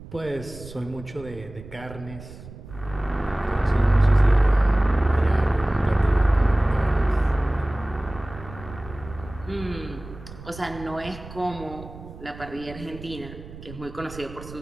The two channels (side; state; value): right; noise; rumble, 15 dB below the sound